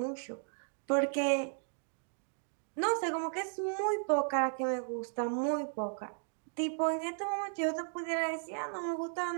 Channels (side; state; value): left; silent; 54 dB below the other